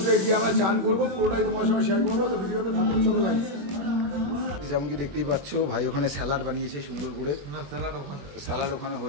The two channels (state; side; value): late; left; 21 ms